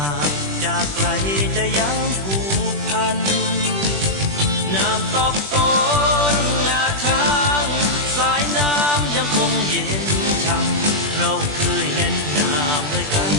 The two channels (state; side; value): late; left; 21 ms